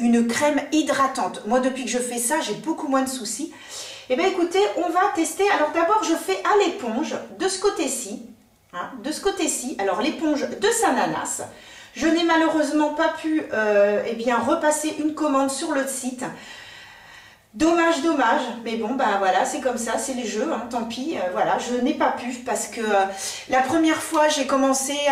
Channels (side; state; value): both; identical; correlation 1.00